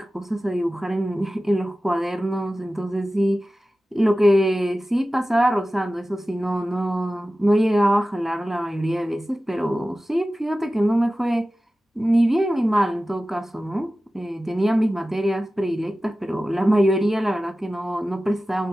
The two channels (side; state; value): both; normal; correlation 0.95